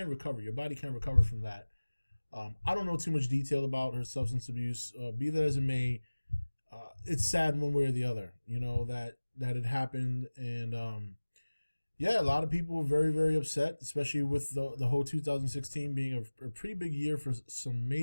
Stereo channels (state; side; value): inverted; both; correlation -1.00